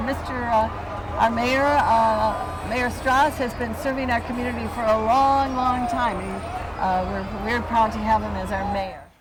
our mayor, Mayor Strauss, has been serving our community for a long, long time. We're very proud to have him as our mayor.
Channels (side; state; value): both; identical; correlation 1.00